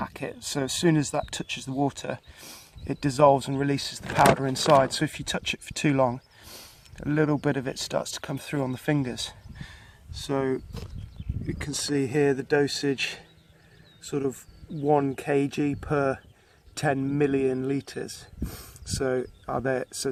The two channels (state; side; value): identical; both; correlation 1.00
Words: so as soon as that touches the water it dissolves and releases the powder inside. So if you touch it for too long, a little bit of it starts to come through on the fingers. So you can see here the dosage, sort of 1 kg per 10 million litres. So it